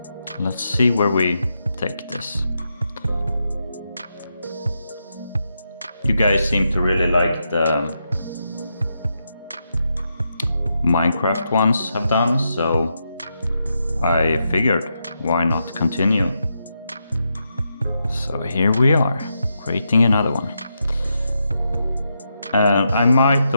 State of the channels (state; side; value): inverted; both; correlation -0.84